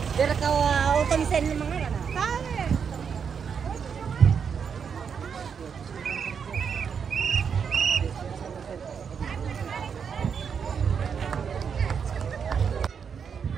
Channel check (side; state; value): left; quieter; 6.8 dB